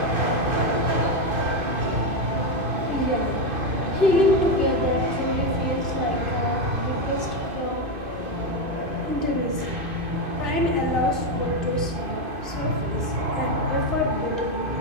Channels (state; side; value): late; left; 2.5 ms